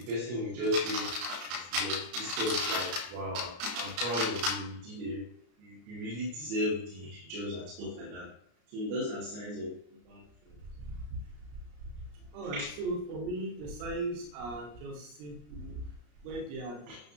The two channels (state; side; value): late; left; 33 ms